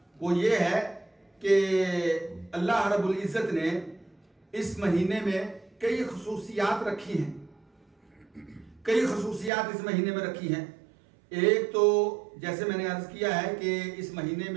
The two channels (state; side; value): drops out; left; at 9.5 s